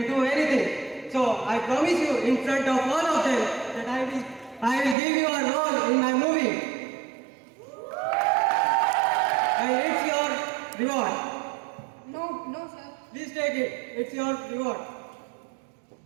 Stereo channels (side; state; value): left; drops out; at 5.0 s